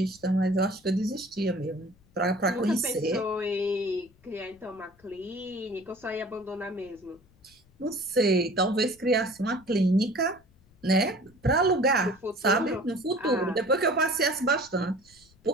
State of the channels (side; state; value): left; noise; rumble, 29 dB below the sound